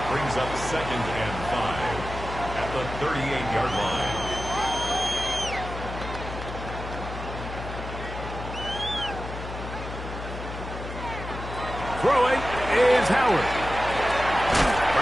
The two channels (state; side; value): noise; left; hum, 9 dB below the sound